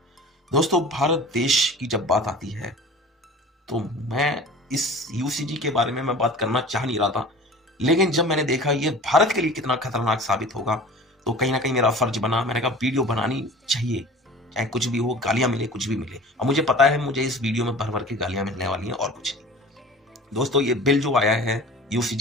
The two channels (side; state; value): both; normal; correlation 0.40